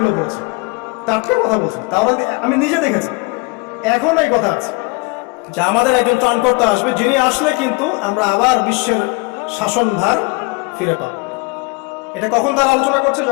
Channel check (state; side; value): quieter; right; 27.3 dB